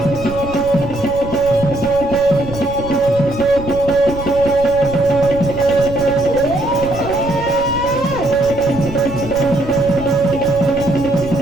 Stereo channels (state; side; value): noise; right; rumble, 12 dB below the sound